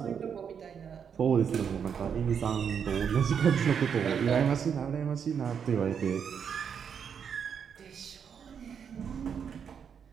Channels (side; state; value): left; quieter; 7.3 dB